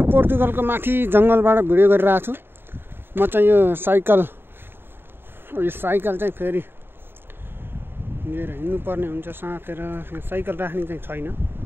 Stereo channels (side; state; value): left; late; 0.10 ms